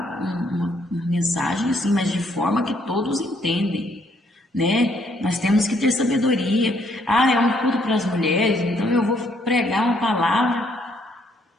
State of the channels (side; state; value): both; normal; correlation 0.69